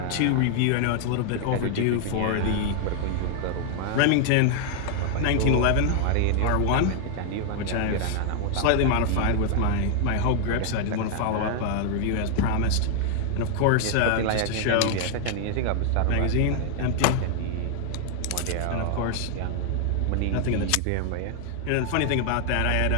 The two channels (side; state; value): both; different; correlation 0.00